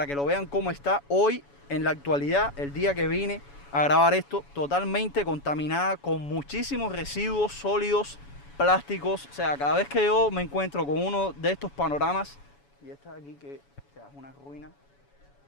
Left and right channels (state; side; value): late; right; 7.1 ms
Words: que lo vean cómo está hoy en la actualidad, el día que vine a grabar esto, totalmente contaminada con muchísimos residuos sólidos, plásticos. O sea, cada vez que yo me encuentro con uno de estos panoramas, y esta de aquí que, o sea, es una ruina